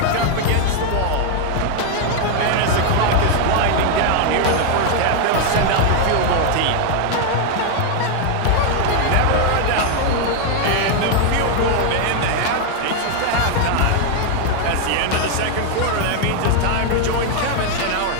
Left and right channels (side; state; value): both; different; correlation 0.00